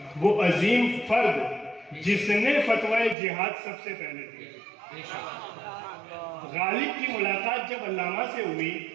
وہ عظیم فرد جس نے فتویٰ جہاد سب سے پہلے دی. غالب کی ملاقات جب علامہ سے ہوئی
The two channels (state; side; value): drops out; left; at 3.2 s